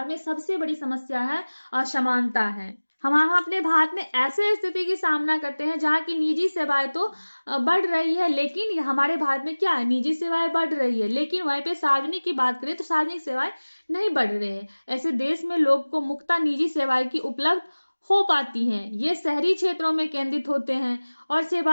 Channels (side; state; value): both; inverted; correlation -1.00